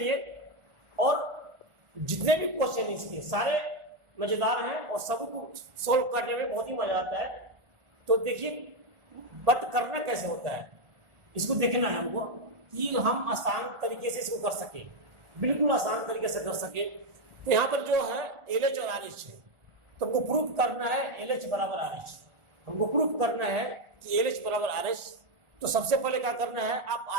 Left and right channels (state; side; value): late; left; 1.4 ms